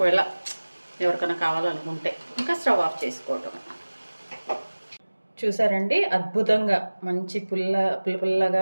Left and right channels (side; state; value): both; inverted; correlation -1.00